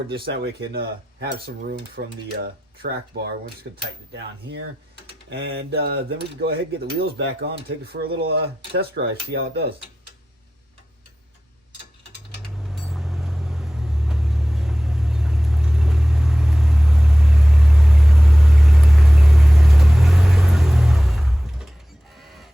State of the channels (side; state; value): both; normal; correlation 0.94